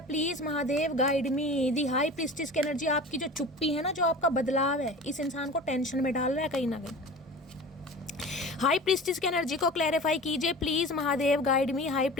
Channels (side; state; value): both; normal; correlation 0.37